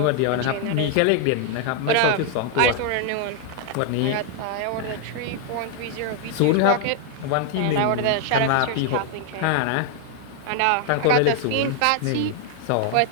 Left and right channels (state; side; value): different; both; correlation 0.00